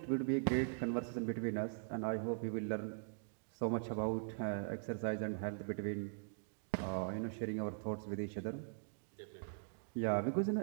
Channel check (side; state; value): left; silent; digital silence